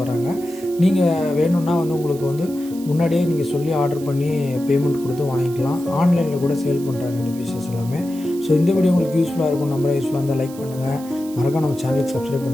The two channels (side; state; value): right; noise; hiss, 19 dB below the sound